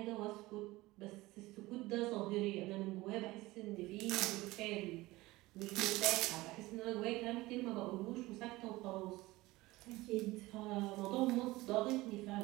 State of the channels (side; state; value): left; quieter; 19.6 dB